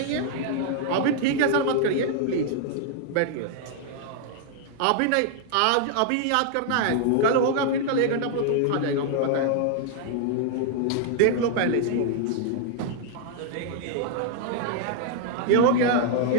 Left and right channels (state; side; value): different; both; correlation 0.00